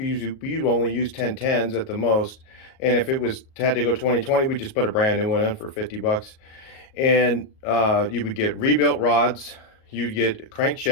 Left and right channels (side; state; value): right; late; 38 ms